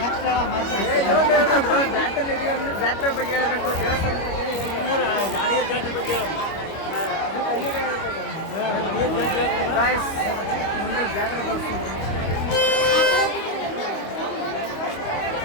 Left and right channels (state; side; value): late; right; 25 ms